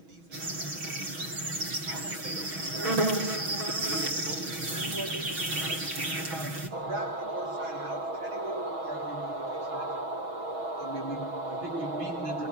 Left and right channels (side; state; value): left; late; 6.2 ms